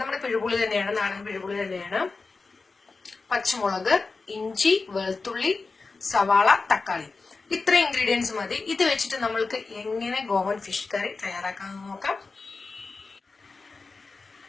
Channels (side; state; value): right; quieter; 4.1 dB